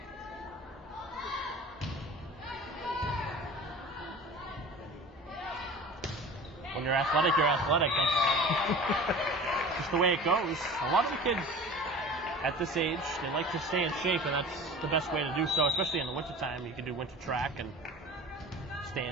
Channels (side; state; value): both; normal; correlation 0.39